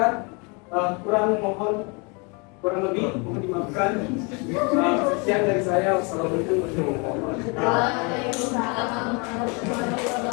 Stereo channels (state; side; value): quieter; right; 31.6 dB